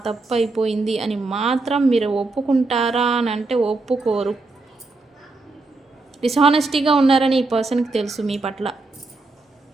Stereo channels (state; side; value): quieter; left; 3.4 dB